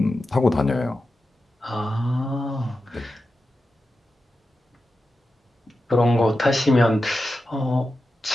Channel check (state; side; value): normal; both; correlation 0.91